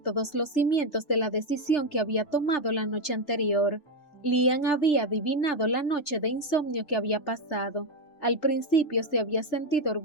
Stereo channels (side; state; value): right; late; 3.4 ms